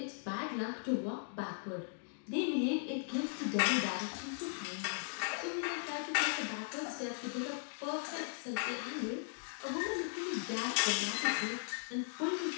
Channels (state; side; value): silent; right; digital silence